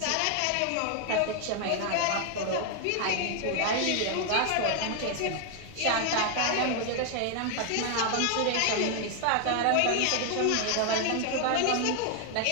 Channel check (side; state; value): both; different; correlation 0.00